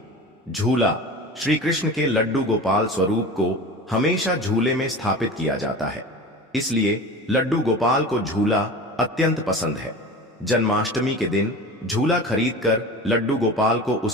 झूला, श्री कृष्ण के लड्डू गोपाल स्वरूप को हमेशा झूले में स्थापित किया जाता है, इसलिए लड्डू गोपाल को झूला अत्यंत पसंद है। जन्माष्टमी के दिन झूला खरीदकर लड्डू गोपाल को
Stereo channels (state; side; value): normal; both; correlation 0.34